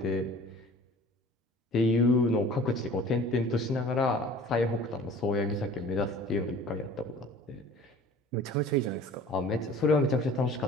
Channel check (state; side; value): normal; both; correlation 0.46